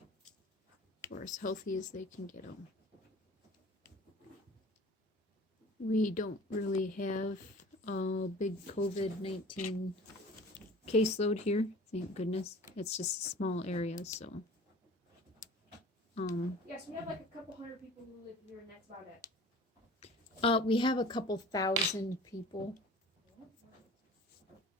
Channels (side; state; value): both; normal; correlation 0.44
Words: or as healthy as they can get them. We don't really have a big COVID-19 caseload here, thank goodness. It's just a small area, so. Yes, we have like a couple hundred people who live here, and that's about it. We have a couple thousand people.